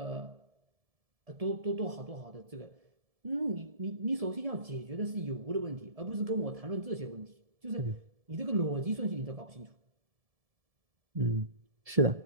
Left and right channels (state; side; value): late; left; 1.7 ms